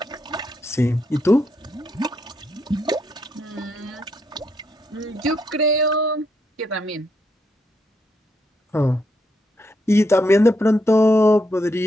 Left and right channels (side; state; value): both; normal; correlation 0.78